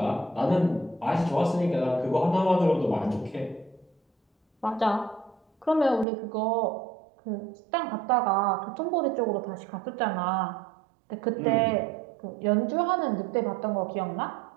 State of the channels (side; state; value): left; drops out; at 6.1 s